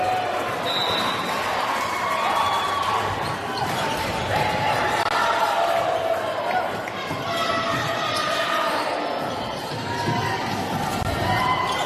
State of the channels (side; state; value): both; identical; correlation 1.00